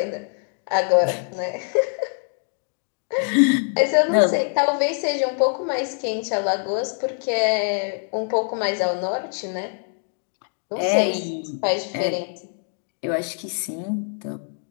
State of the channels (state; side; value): silent; right; 57 dB below the other